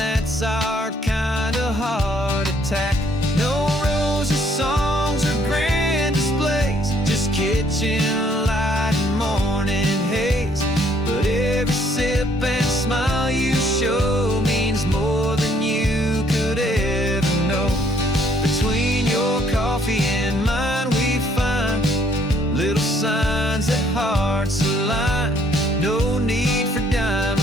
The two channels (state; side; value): normal; both; correlation 0.65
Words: our kind of heart attack. No rosy songs or grand displays, just kitchen light and morning haze. But every sip and smile you show means more than you could ever know. Between your coffee and mine we find little signs that hearts align. No need for